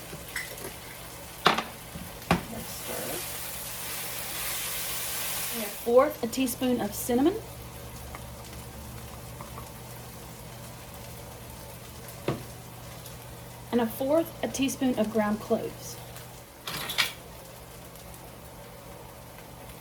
Let's stir. 1/4 teaspoon of cinnamon. And 1/4 teaspoon of ground cloves.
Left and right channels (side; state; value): both; identical; correlation 1.00